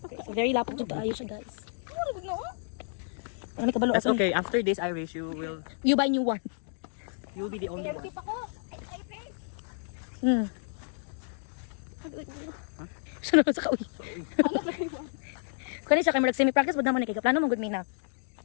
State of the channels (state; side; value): silent; right; digital silence